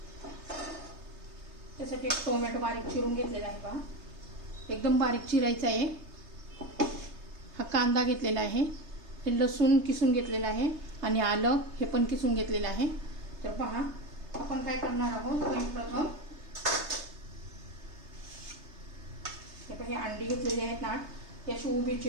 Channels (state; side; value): late; left; 3.3 ms